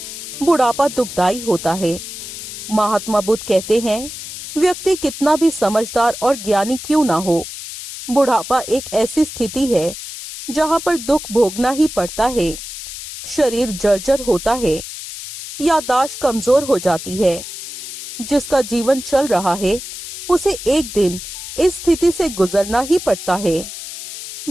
बुढ़ापा दुखदाई होता है। महात्मा बुद्ध कहते हैं, व्यक्ति कितना भी समझदार और ज्ञानी क्यों ना हो, बुढ़ापा एक ऐसी स्थिति है जहाँ पर दुख भोगना ही पड़ता है। शरीर जर्जर होता है, याददाश्त कमजोर हो जाती है। जिसका जीवन चल रहा है उसे एक दिन इस स्थिति से गुजरना ही पड़ता है।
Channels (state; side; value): noise; left; hiss, 10 dB below the sound